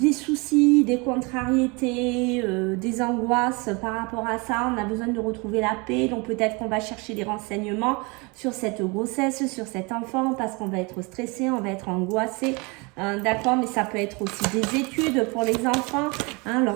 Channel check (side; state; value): left; quieter; 28.4 dB